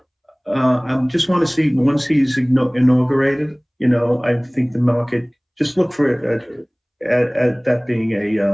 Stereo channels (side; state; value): both; identical; correlation 1.00